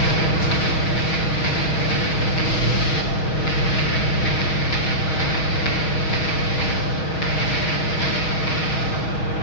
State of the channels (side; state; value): right; late; 6.3 ms